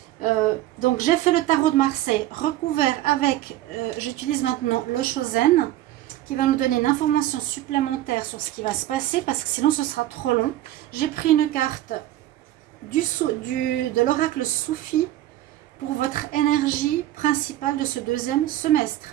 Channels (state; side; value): quieter; left; 14.2 dB